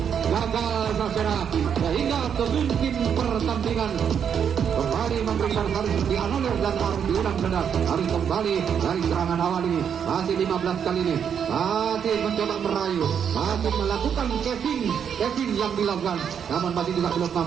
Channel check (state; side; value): quieter; left; 7.8 dB